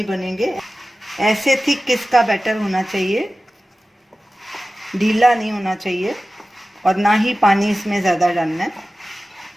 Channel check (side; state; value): both; normal; correlation 0.96